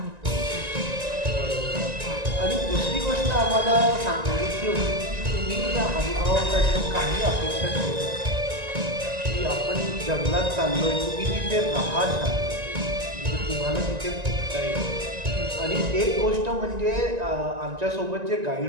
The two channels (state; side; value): late; left; 1.9 ms